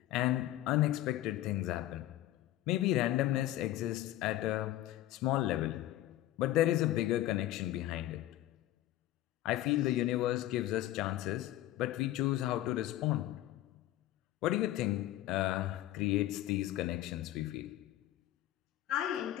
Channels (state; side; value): quieter; right; 14.5 dB